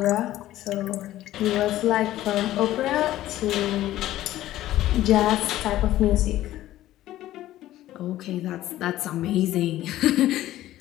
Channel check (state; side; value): quieter; right; 14.5 dB